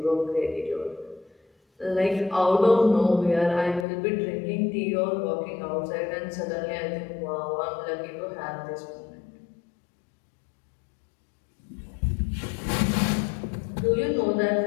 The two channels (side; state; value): right; drops out; at 3.9 s